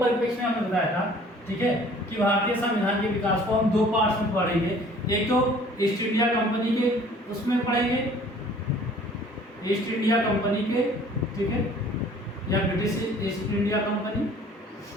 में हमने बताया था, ठीक है, कि भारतीय संविधान के विकास को हम दो पार्ट्स में पढ़ेंगे। एक तो ईस्ट इंडिया कंपनी के उसमें पढ़ेंगे, ईस्ट इंडिया कंपनी के, ठीक है, या ब्रिटिश ईस्ट इंडिया कंपनी,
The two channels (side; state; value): both; normal; correlation 0.52